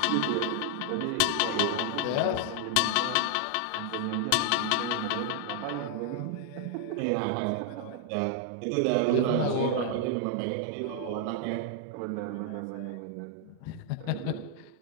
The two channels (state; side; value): different; both; correlation 0.00